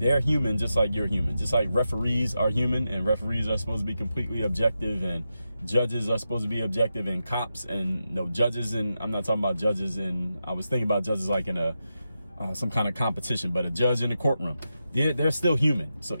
human just like you're human. Just like referees are human, and referees are supposed to be completely objective, and judges are supposed to be objective, and cops and judges, and I'm not talking about judges, and I was thinking about judges like in a some kind of competition, but a judge in a courtroom, they're still human. So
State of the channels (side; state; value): both; inverted; correlation -0.89